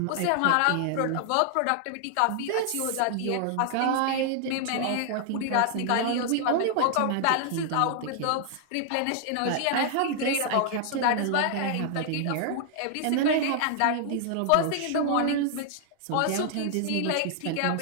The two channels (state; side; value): different; both; correlation 0.00